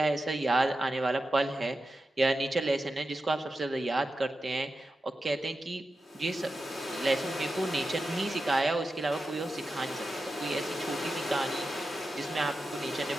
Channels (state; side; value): normal; both; correlation 0.91